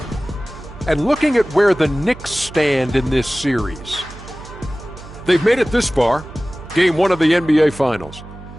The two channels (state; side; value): noise; right; hum, 16 dB below the sound